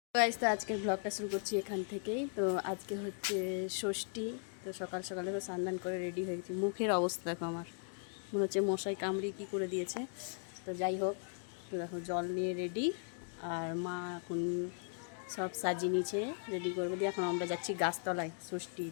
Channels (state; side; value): silent; right; 53 dB below the other